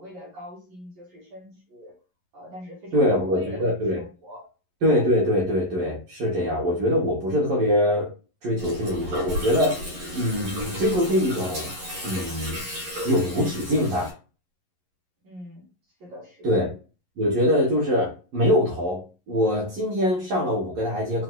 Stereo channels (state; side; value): late; left; 11 ms